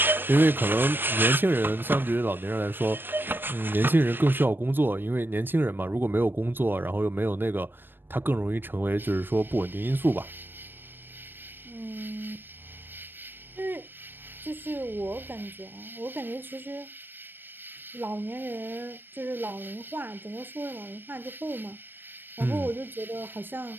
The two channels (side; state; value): left; late; 0.096 ms